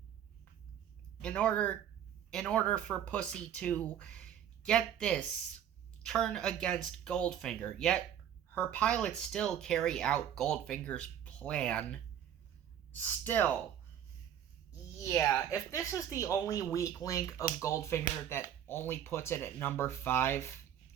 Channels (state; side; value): quieter; left; 9.8 dB